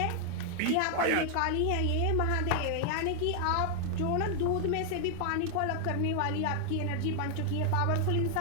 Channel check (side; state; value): both; different; correlation 0.00